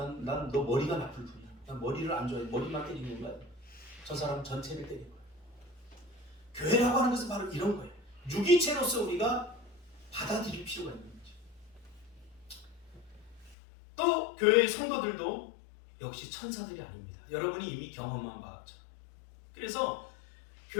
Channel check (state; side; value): drops out; right; at 13.6 s